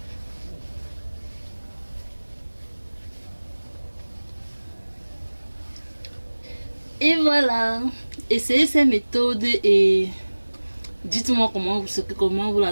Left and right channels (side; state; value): both; inverted; correlation -1.00